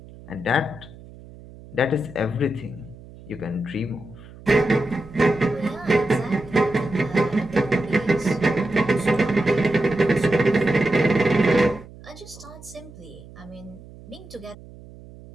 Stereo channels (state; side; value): noise; right; hum, 19 dB below the sound